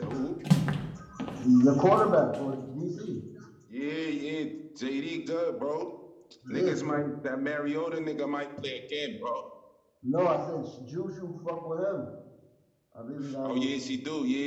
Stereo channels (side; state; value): both; identical; correlation 1.00